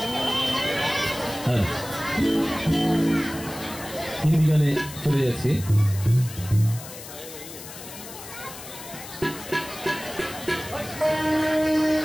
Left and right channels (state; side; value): noise; left; hiss, 13 dB below the sound